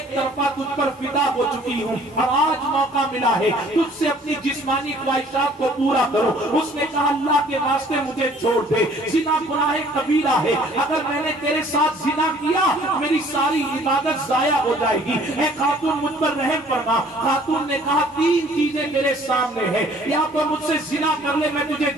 طرفہ تجھ پر فدا ہو چکی ہوں اور آج موقع ملا ہے تجھ سے اپنی جسمانی خواہشات کو پورا کرو۔ اس نے کہا اللہ کے واسطے مجھے چھوڑ دے، زنا گناہ کبیرہ ہے، اگر میں نے تیرے ساتھ زنا کیا میری ساری عبادت ضائع ہو جائے گی، اے خاتون مجھ پر رحم فرما۔ خاتون نے کہا تین چیزیں میرے سامنے ہیں، یا تو مجھ سے زنا کر لے میں تجھے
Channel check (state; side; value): normal; both; correlation 0.55